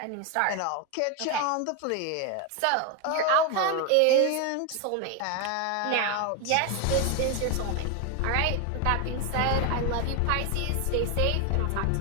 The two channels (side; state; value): both; different; correlation 0.01